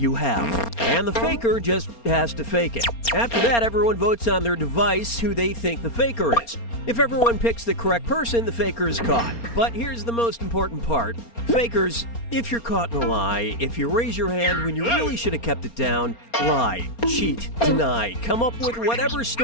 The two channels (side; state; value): right; late; 4.3 ms